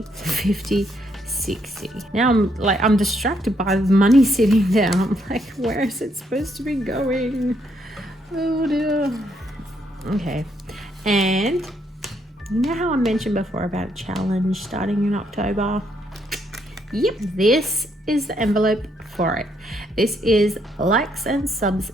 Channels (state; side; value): normal; both; correlation 0.73